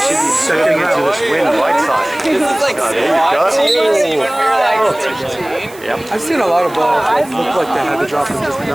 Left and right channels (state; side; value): noise; right; hiss, 21 dB below the sound